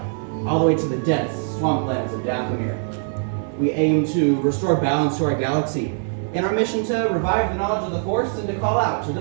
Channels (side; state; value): left; silent; 58 dB below the other